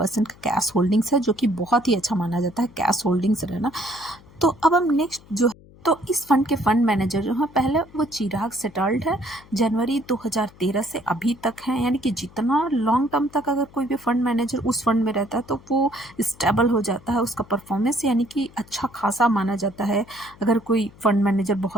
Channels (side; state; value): left; noise; hum, 24 dB below the sound